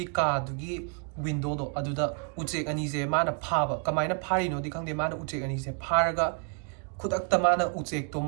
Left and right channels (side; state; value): left; quieter; 36.6 dB